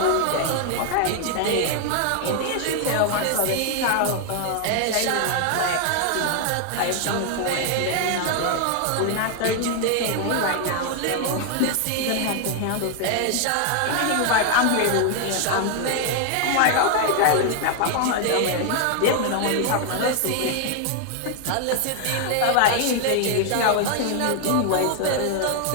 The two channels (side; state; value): both; different; correlation 0.00